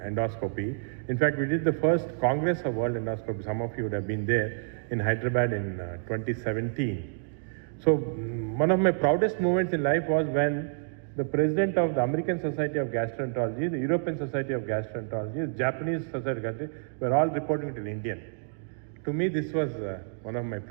In fact, we did the first Congress of World Endoscopy. Some of you would have been there in Hyderabad in 2017. So one of my proudest moments in life was when the president of the American Society of Gastroenterology, the European Society of Gastroenterology, the Japanese Society of Gastroenterology were all reporting to an Indian. To me, this was one of my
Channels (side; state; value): left; silent; digital silence